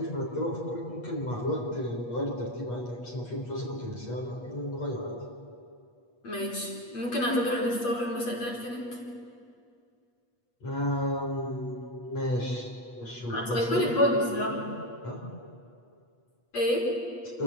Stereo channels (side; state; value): right; late; 8.3 ms